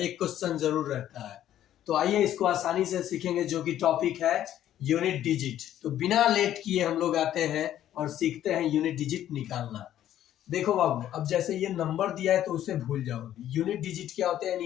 क्वेश्चन जरूर रहता है। तो आइए इसको आसानी से सीखेंगे, जो कि टॉपिक है यूनिट डिजिट। तो बिना लेट किए हम लोग आते हैं और सीखते हैं यूनिट डिजिट निकालना। देखो बाबू, अब जैसे ये नंबर दिया है तो उसे भूल जाओ। यूनिट डिजिट क्या होते हैं,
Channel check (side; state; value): right; quieter; 11.8 dB